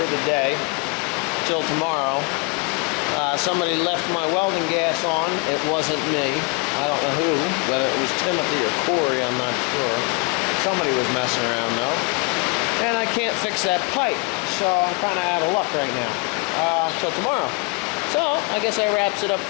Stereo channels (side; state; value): right; quieter; 30.0 dB